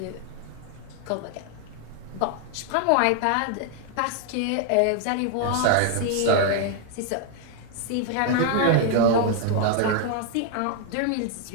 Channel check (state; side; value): different; both; correlation 0.00